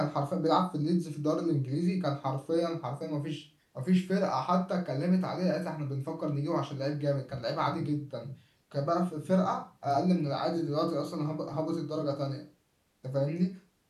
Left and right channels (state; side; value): identical; both; correlation 1.00